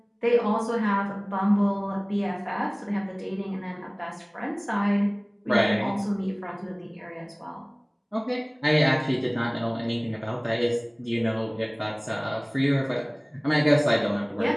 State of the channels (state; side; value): identical; both; correlation 1.00